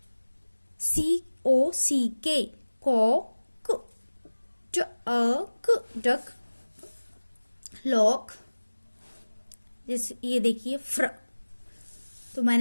सी ओ सी के, को क, ट अ क, डक। लॉक, जैसे ये देखिए फ्र, तो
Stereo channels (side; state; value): both; inverted; correlation -1.00